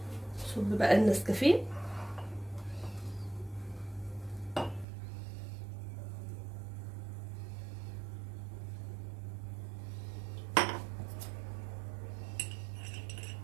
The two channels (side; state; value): left; drops out; at 4.9 s